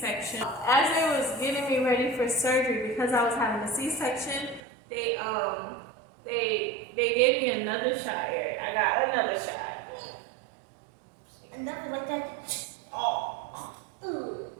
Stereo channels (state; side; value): drops out; left; at 4.6 s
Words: As they was getting me ready for surgery, because I was having a C-section, they gave me another shot here. I got another shot. Another like that. Oh.